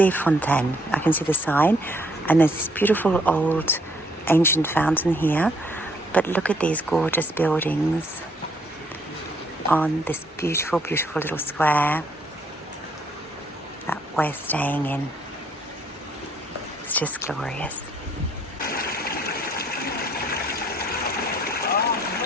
Fontaines. I can see the sign. And there's this beautiful old ancient fountain here. But look at these gorgeous buildings on this beautiful, beautiful little square that we're staying in. It's just glorious.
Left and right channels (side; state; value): both; normal; correlation 0.66